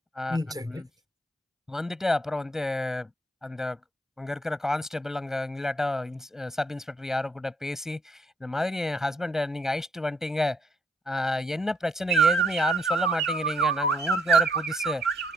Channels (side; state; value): both; normal; correlation 0.69